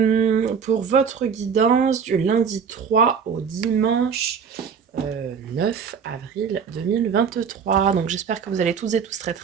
pour votre guidance du lundi 3 au dimanche 9 avril 2023. Donc j'espère que vous allez toutes et tous très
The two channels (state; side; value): quieter; left; 6.6 dB